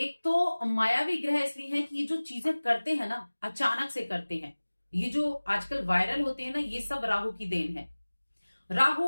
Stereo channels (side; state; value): both; inverted; correlation -1.00